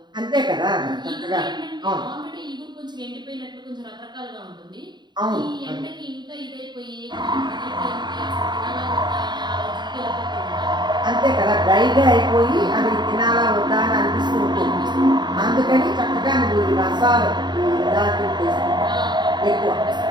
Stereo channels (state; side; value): late; left; 0.21 ms